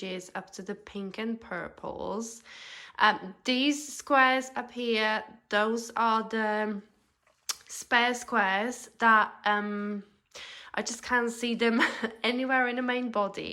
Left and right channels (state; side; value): identical; both; correlation 1.00